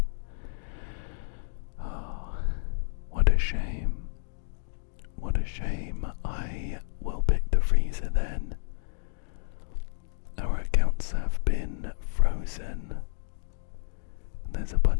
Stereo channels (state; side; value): silent; right; digital silence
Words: Oh, what a shame. What a shame. I will pick the freezer then. Our accounts have been frozen. There's a